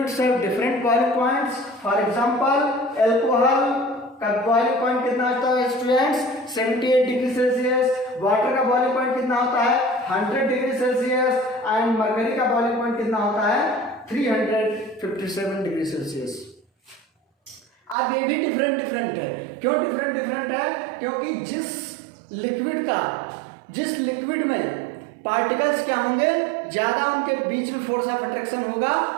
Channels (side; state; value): left; drops out; at 17.9 s